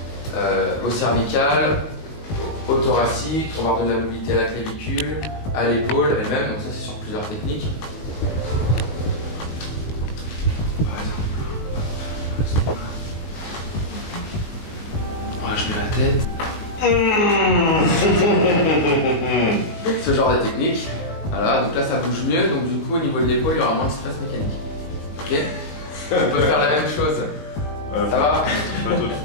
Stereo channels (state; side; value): late; right; 19 ms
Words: au cervical, au thoracique, on va redonner de la mobilité à la clavicule, à l'épaule elle-même, donc ça c'est sur plusieurs techniques. Voilà, je mets la tête. Ce genre de technique. Voilà, donc là ça bouge mieux, donc du coup au niveau de l'épaule il y aura moins de stress mécanique. Ok. On peut faire la même chose. Ça va?